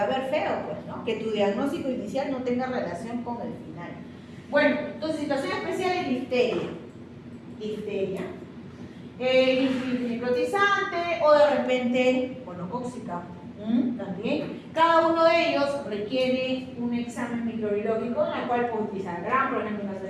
a ver feo, pues, ¿no? Que tu diagnóstico inicial no tenga relación con el final. Bueno, entonces, situación especial es difteria. Difteria. Necrotizante o de repente gonocóxica. También. Cada uno de ellos requiere un examen microbiológico en el cual puede utilizar GRAM, por ejemplo, en caso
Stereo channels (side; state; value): both; identical; correlation 1.00